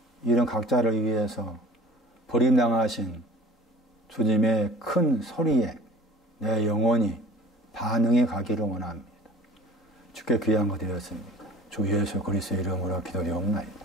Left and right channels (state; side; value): normal; both; correlation 0.46